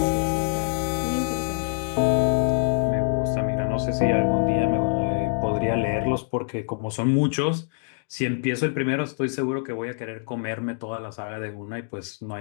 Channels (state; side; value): silent; right; digital silence